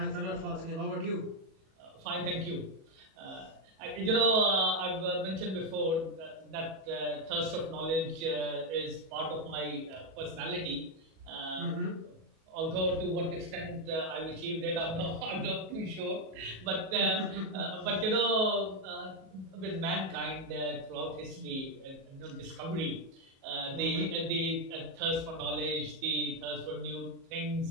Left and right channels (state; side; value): late; left; 37 ms